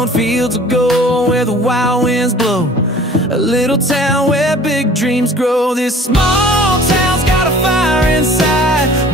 fields of gold where the wild winds blow, a little town where big dreams grow. This small town's got a fire inside,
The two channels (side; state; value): both; normal; correlation 0.48